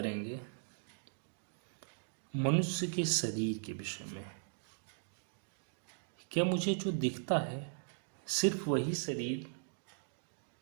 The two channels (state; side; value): silent; left; digital silence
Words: मनुष्य के शरीर के विषय में। क्या मुझे जो दिखता है सिर्फ वही शरीर